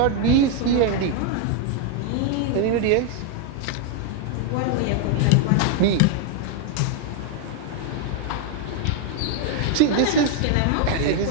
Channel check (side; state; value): both; different; correlation 0.00